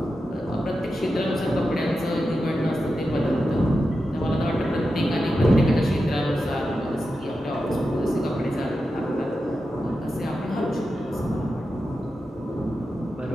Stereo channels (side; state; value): both; normal; correlation 0.90